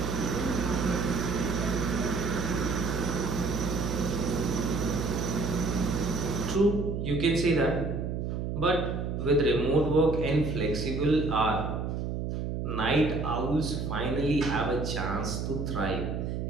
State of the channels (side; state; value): right; noise; hum, 2 dB below the sound